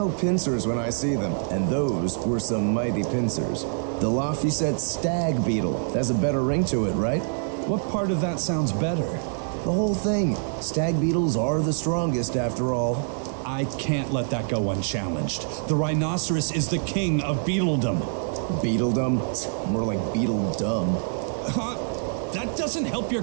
pincers when I see them, and those were some mighty pincers. The Laphicet stag beetle has a better ring to it, right? What part of that sounds better? The whole thing. Stag beetles are the strongest after all. I can't let that go unchallenged. The rhinoceros is the king of beetledom. Beetledom? More like beetle dumb. That doesn't help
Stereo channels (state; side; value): silent; left; digital silence